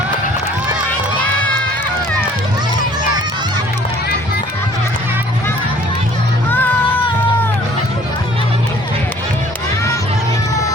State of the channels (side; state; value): both; normal; correlation 0.54